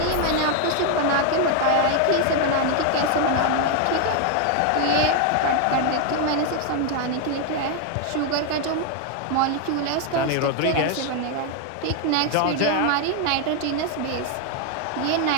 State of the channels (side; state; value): both; different; correlation 0.01